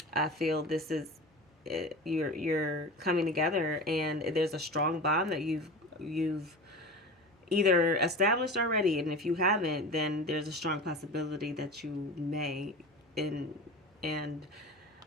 I feel this is you're coming together, and there's a strong bond that you've either established already, and if you haven't, then there's a strong possibility that you may. And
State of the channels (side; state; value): both; normal; correlation 0.31